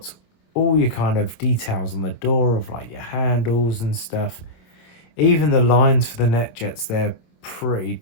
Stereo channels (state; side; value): late; right; 27 ms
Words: all your kind of details on the door of like your handles and stuff. Even the lines for the net jets, they're pretty